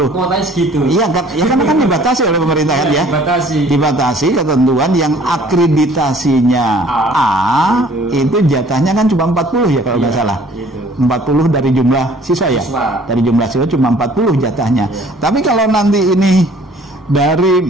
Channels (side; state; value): both; normal; correlation 0.54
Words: kuotanya segitu. Iya kan dibatasi oleh pemerintah kan ya, dibatasi ketentuan yang akreditasinya A itu jatahnya kan cuma 40 ya kalau nggak salah, 40 dari jumlah siswa ya, dari jumlah siswa cuma 40 jatahnya. Tapi kalau nanti ini